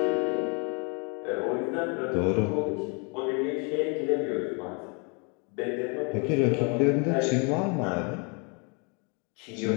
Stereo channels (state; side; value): quieter; right; 34.1 dB